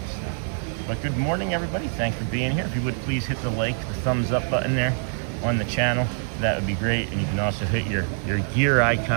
So. But good morning, everybody. Thanks for being here. If you would please hit the like, the thumbs up button there on the channel, that would be great. And you can also hit your gear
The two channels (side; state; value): left; silent; 62 dB below the other